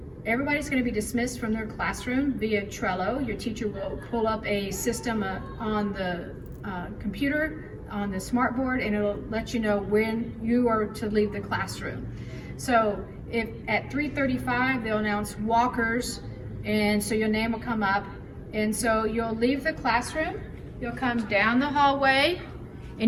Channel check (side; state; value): both; identical; correlation 1.00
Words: Everybody's going to be dismissed from their classroom via Trello. Your teacher will pull up a system on the computer, on the smartboard, and it'll let you know when you are to leave the classroom. So if at 3:35 they'll announce walkers, and so your name will come up, and so you'll leave the classroom, you'll come down the hallway,